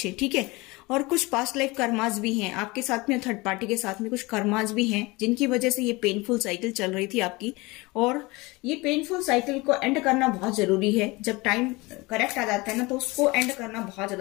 ठीक है, और कुछ पास्ट लाइफ कर्मास भी हैं आपके साथ में, थर्ड पार्टी के साथ में कुछ कर्मास भी हैं जिनकी वजह से ये पेनफुल साइकिल चल रही थी आपकी। और ये पेनफुल साइकिल को एंड करना बहुत जरूरी है। जब टाइम करेक्ट आ जाता है ना तो उसको एंड करना बहुत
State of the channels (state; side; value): quieter; right; 23.5 dB